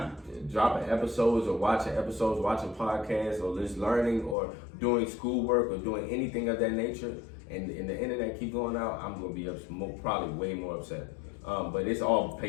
dropping episodes or watching podcasts or just learning or doing schoolwork or doing anything of that nature, and the internet keep going out, I'm gonna be probably way more upset. But it's all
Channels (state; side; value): drops out; right; at 4.4 s